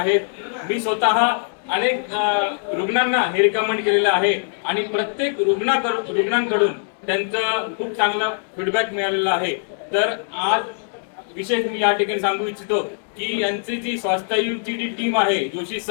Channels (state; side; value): silent; right; digital silence